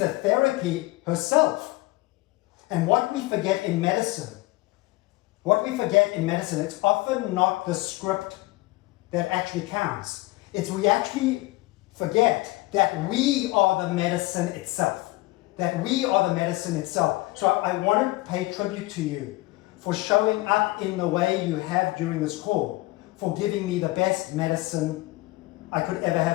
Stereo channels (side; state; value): right; quieter; 20.4 dB